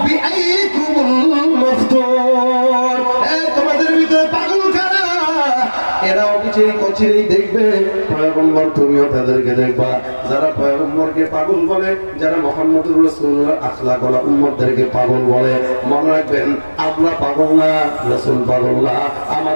বিআইকুমুল মাফতুন, তোমাদের ভিতরে পাগল কারা, এরা অবিচেই কচিরেই দেখবে পয়গম্বর, তুমিও তাদেরকে দেখবা। যারা পয়গম্বরকে পাগল বলে, যারা মুহাম্মদুর রাসূলুল্লাহ আখলাকওয়ালা উম্মতদেরকে পাগল বলে, মনে রাখবেন আমরা পাগল না, রাসূল পাগল না।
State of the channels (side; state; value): both; inverted; correlation -1.00